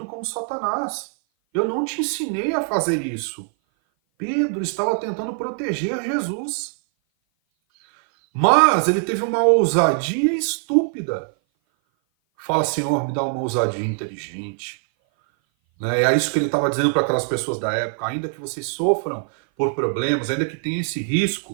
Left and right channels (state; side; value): silent; left; 57 dB below the other